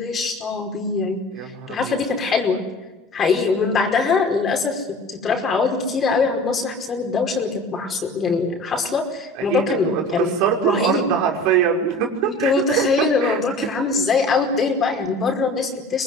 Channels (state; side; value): normal; both; correlation 0.41